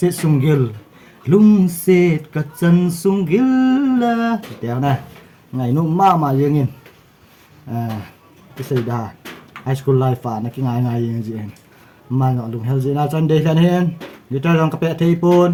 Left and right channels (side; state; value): both; identical; correlation 1.00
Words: sunggil. Lungsit kacan sunggil lah. Tiang nah. Ngai nu ma yengin. Cái dah. High school life nak ngai yang jian. Mana lung hel zina chan de kan hen. Kita orang kapek